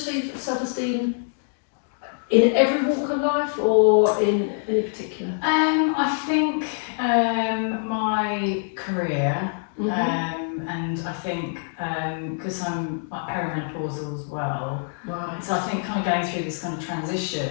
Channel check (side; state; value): right; silent; digital silence